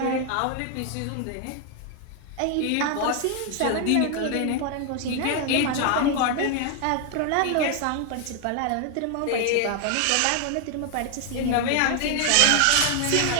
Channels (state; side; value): different; both; correlation 0.00